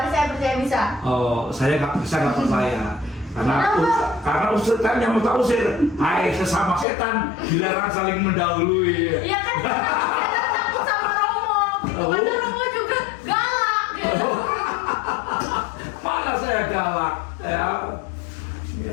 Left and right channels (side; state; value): right; drops out; at 6.9 s